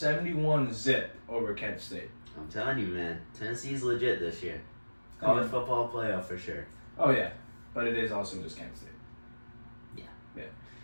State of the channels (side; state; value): both; inverted; correlation -1.00